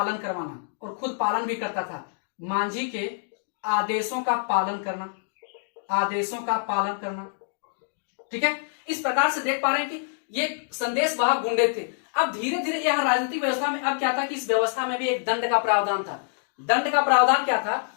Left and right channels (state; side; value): silent; right; digital silence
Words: करवाना, और खुद पालन भी करता था। मांझी के आदेशों का पालन करना, ठीक है। इस प्रकार से देख पा रहे हैं कि ये संदेश वाहक गुंडे थे। अब धीरे धीरे यह राजनीतिक व्यवस्था में अब क्या था कि इस व्यवस्था में भी एक दंड का प्रावधान था। दंड का प्रावधान क्या था